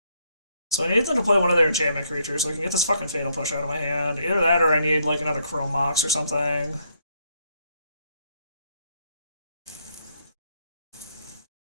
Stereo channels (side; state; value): both; inverted; correlation -0.72